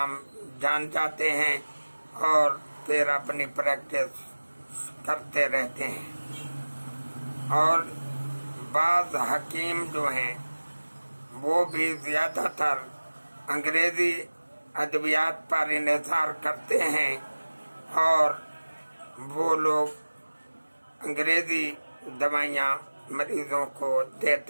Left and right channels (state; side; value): inverted; both; correlation -1.00